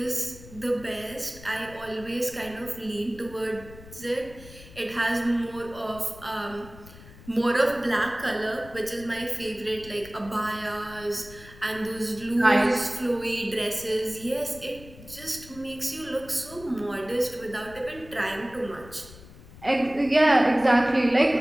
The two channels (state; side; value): noise; left; rumble, 18 dB below the sound